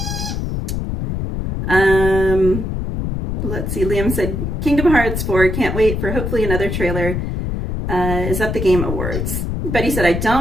Let's see. Liam said, Kingdom Hearts 4, can't wait for hopefully another trailer. Is at the Game Awards. Betty said, I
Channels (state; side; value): noise; left; rumble, 2 dB below the sound